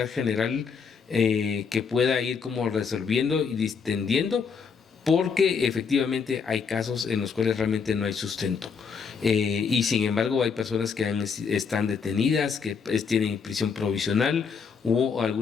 general, que pueda ir como resolviendo y distendiendo, porque efectivamente hay casos en los cuales realmente no hay sustento, y sin embargo hay personas que están detenidas, que tienen prisión provisional, o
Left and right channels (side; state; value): right; quieter; 5.8 dB